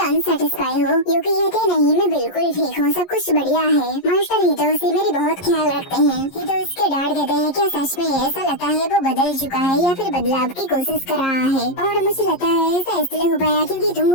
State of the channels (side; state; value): right; late; 11 ms